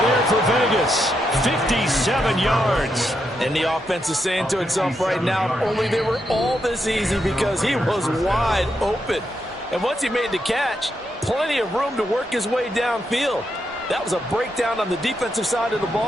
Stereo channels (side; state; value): both; normal; correlation 0.82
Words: there for Vegas. 57 yards. And the offense is saying to itself right now, only they were all this easy because he was wide open. And once he made the catch, plenty of room to work his way downfield. That was a breakdown on the defensive side of the